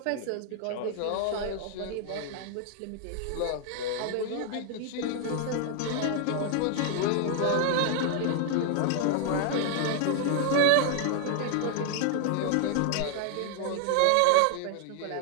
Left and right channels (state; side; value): different; both; correlation 0.00